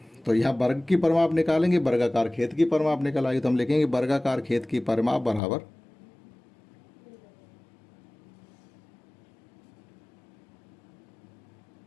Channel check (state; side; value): drops out; right; at 5.4 s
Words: तो यहाँ वर्ग की परिमाप निकालेंगे, वर्गाकार खेत की परिमाप निकल आएगी। तो हम लिखेंगे वर्गाकार खेत की परिमाप बराबर